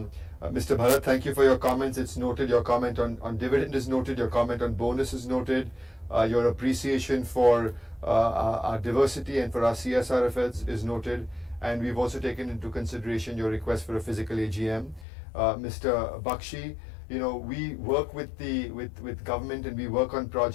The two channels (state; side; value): drops out; right; at 15.1 s